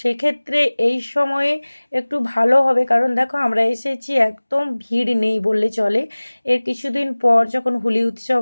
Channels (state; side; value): inverted; both; correlation -1.00